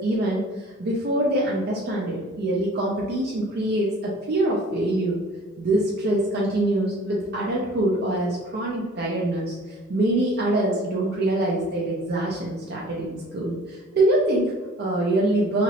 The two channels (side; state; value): both; normal; correlation 0.49